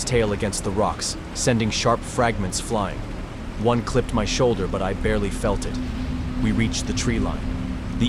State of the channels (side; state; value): both; identical; correlation 1.00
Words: tail against the rocks, sending sharp fragments flying. One clipped my shoulder, but I barely felt it. We reached the tree line.